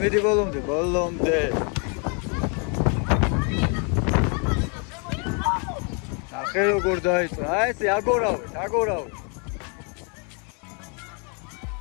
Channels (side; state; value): right; quieter; 36.8 dB